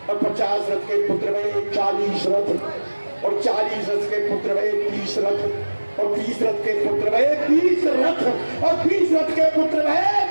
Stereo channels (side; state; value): both; inverted; correlation -1.00